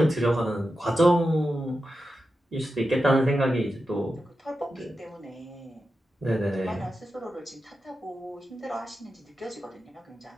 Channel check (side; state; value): both; normal; correlation 0.90